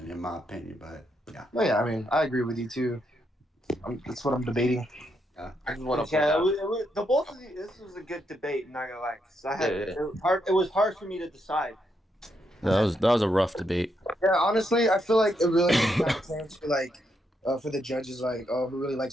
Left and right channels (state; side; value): normal; both; correlation 0.79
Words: in my opinion. But yeah, No, yeah, I mean, I agree with you too. That's what I'm debating. I just want to Yeah, point out. the both of these. This was a good debate. Not gonna lie, 'cause Yeah. it was hard for me to decide. That was a rough debate. Yeah, honestly, I feel like it really kind of came to like for the judges, like, oh, who really